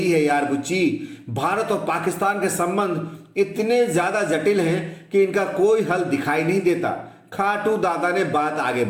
है यार बुच्ची, भारत और पाकिस्तान के संबंध इतने ज्यादा जटिल हैं कि इनका कोई हल दिखाई नहीं देता। खाटू दादा ने बात आगे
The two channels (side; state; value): both; identical; correlation 1.00